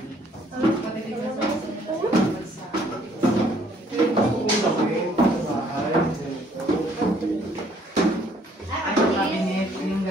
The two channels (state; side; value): normal; both; correlation 0.63